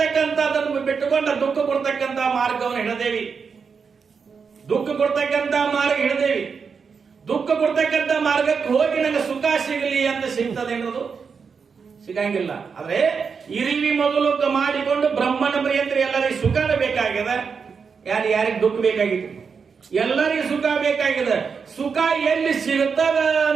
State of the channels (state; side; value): quieter; left; 5.7 dB